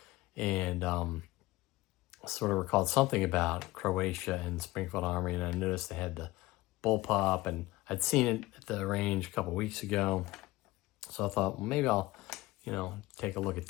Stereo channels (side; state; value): right; quieter; 18.9 dB